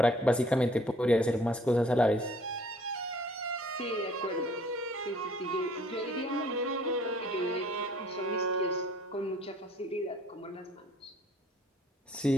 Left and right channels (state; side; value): normal; both; correlation 0.57